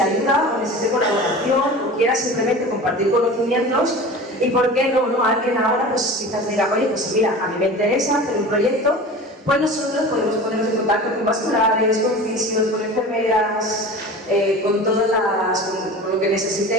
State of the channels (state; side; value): normal; both; correlation 0.35